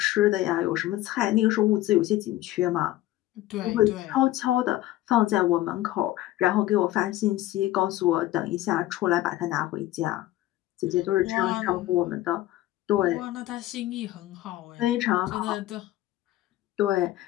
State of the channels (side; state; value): right; quieter; 15.3 dB